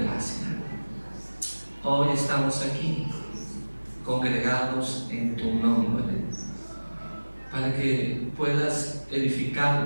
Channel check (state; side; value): inverted; both; correlation -1.00